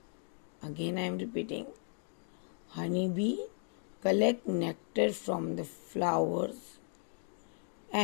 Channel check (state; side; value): silent; right; 54 dB below the other